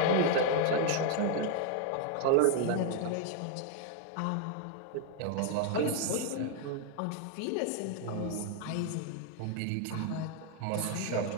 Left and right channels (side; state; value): both; different; correlation 0.00